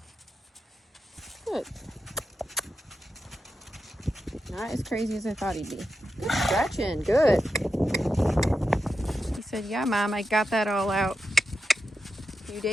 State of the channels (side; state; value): both; normal; correlation 0.89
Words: Good. Not as crazy as I thought he'd be. Good stretching, good. He said, yeah, Mom, I got that all out a few